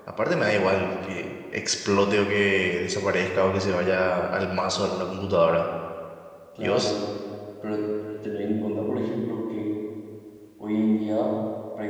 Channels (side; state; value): both; identical; correlation 1.00